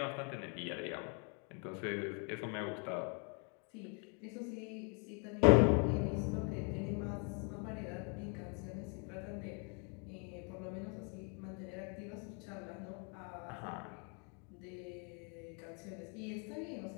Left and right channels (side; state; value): right; quieter; 36.7 dB